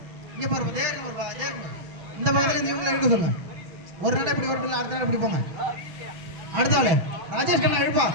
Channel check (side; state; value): left; late; 6.0 ms